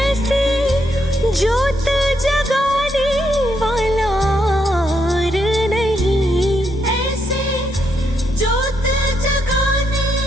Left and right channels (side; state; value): both; normal; correlation 0.78